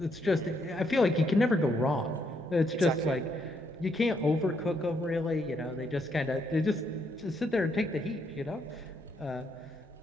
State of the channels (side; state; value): both; normal; correlation 0.74